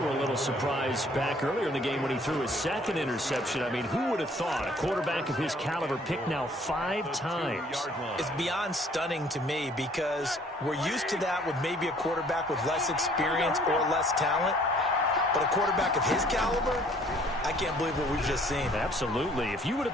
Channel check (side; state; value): both; normal; correlation 0.58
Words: a little surprised back earlier in the game when he threw his second interception. I mean, who would have thought a quarterback of his caliber picked now 5 times? It's beyond stunning to me because we're used to that with maybe a quarterback with less experience or less talent. But a quarterback of his caliber, I can't believe what we've just seen. Absolutely. If you would